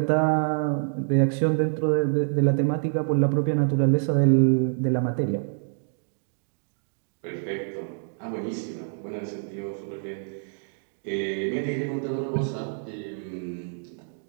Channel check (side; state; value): left; silent; digital silence